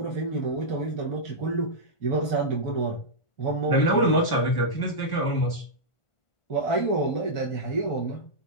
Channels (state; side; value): late; right; 1.5 ms